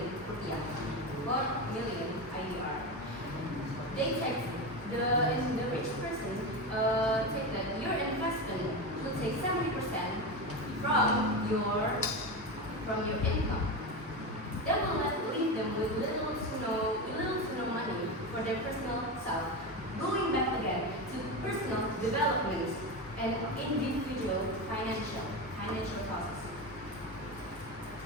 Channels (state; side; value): normal; both; correlation 0.19